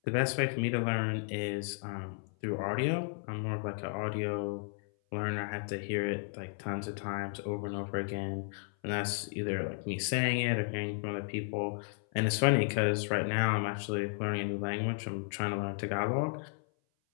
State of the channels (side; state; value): right; silent; 55 dB below the other